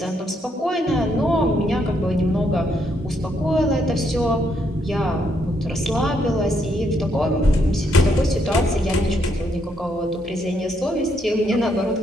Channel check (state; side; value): normal; both; correlation 0.75